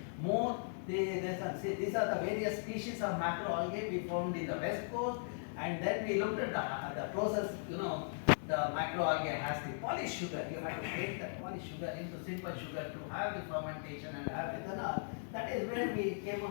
more. These are the various species of macroalgae we found in the west coast, and then we looked at the process. The macroalgae has the polished sugar. You have to break that polished sugar into simple sugar to have the fermentation and have ethanol. That is where we came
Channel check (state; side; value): silent; right; digital silence